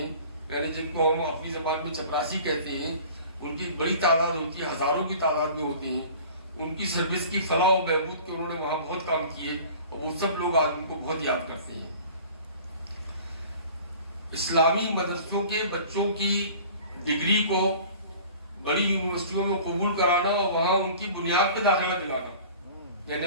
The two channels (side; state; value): both; inverted; correlation -0.44